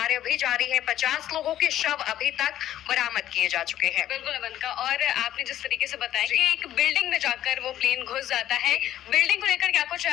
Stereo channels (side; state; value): right; quieter; 12.3 dB